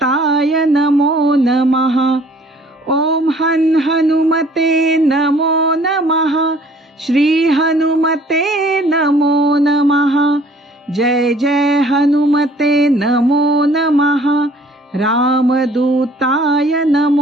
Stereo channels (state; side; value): normal; both; correlation 0.56